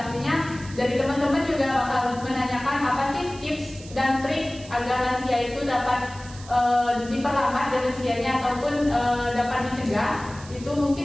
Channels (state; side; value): noise; right; hiss, 18 dB below the sound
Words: dari teman-teman juga bakal menanyakan apa sih tips dan trik agar lansia itu dapat diperlambat demensianya ataupun dapat dicegah. Itu